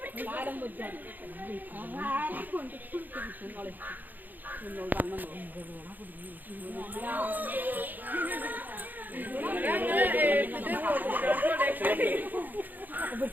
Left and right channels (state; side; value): late; left; 0.086 ms